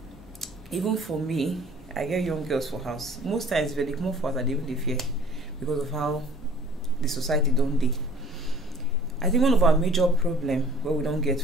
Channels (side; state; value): both; normal; correlation 0.50